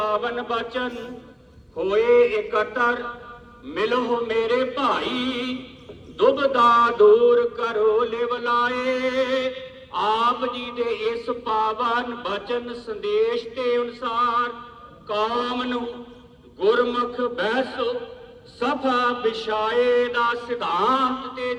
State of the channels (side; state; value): both; identical; correlation 1.00